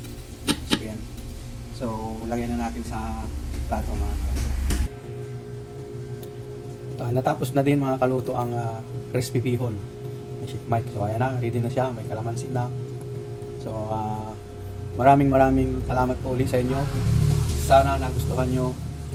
So yan. So lagyan na natin sa plato mga kaluto. Natapos na din mga kaluto ang crispy bihon. May sheet mic. So ayan na, ready na siya. May kalamansi na. So maraming salamat po ulit sa inyo. Sana nagustuhan nyo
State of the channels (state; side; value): identical; both; correlation 1.00